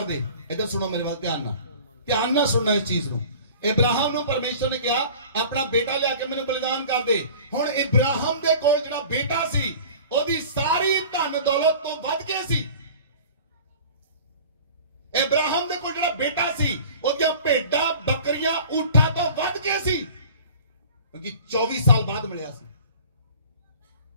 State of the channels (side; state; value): both; inverted; correlation -0.44